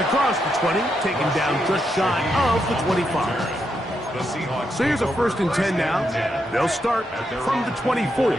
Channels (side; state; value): both; normal; correlation 0.82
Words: across the 20, taken down just shy of the 25. So here's a 1st and 10 now. They'll start from the 24.